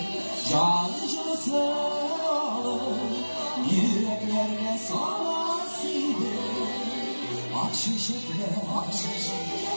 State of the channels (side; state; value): both; inverted; correlation -1.00